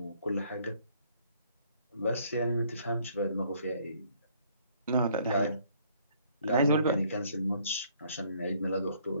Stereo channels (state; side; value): inverted; both; correlation -0.63